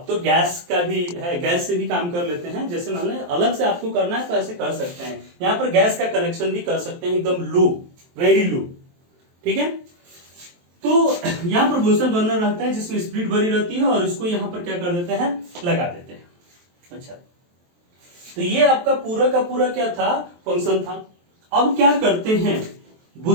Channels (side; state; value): left; late; 23 ms